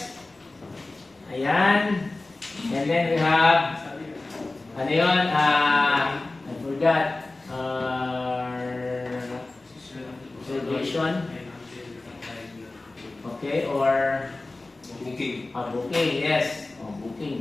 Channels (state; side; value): quieter; right; 3.1 dB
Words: Ayan. And then we have, I forgot. Reservation. Okay, or booking. Booking, yes.